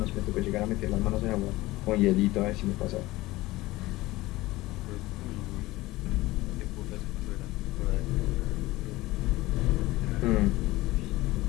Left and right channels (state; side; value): quieter; right; 18.7 dB